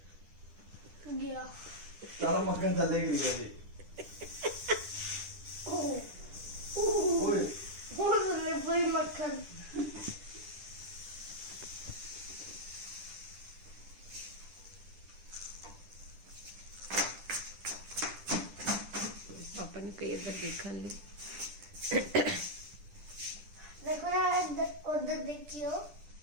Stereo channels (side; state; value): left; late; 10 ms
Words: गया सारा मक्खन थल्ले गिर गया जी। ओए कोई मक्खन पापा ने कई इधर देखा ली। देखो ना उधर देखियो